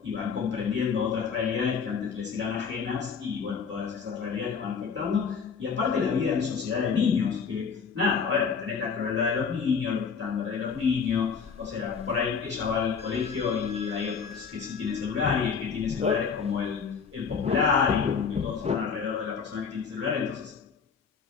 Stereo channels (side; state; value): right; quieter; 6.0 dB